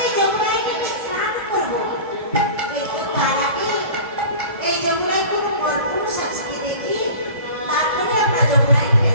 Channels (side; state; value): both; inverted; correlation -0.39